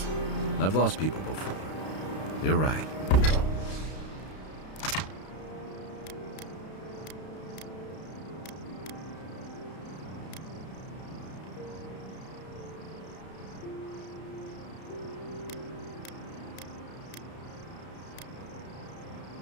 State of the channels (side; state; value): right; late; 32 ms